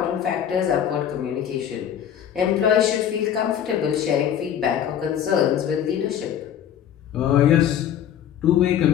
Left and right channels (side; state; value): right; quieter; 9.7 dB